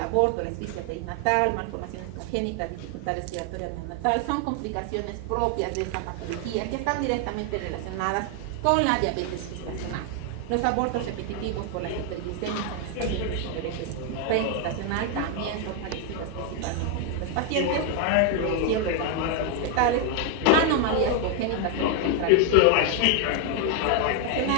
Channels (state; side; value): different; both; correlation 0.01